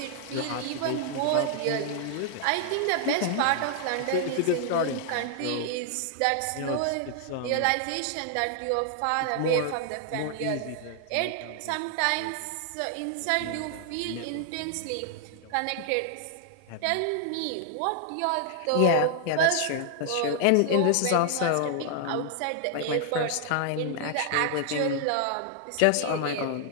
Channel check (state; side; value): different; both; correlation -0.01